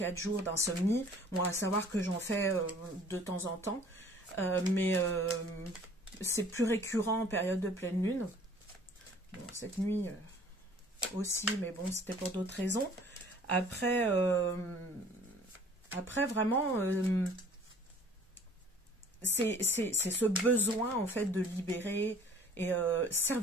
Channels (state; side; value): normal; both; correlation 0.52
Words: jours d'insomnie. Bon, à savoir que j'en fais de temps en temps. Mais c'est plus récurrent en période de pleine lune. Bon, cette nuit aussi, mais bon, c'était pour d'autres raisons. Après vraiment, c'est ce besoin en fait de libérer et